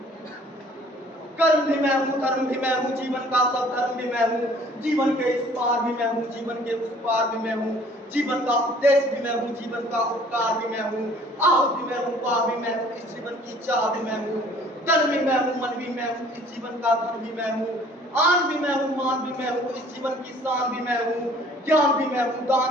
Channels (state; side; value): normal; both; correlation 0.54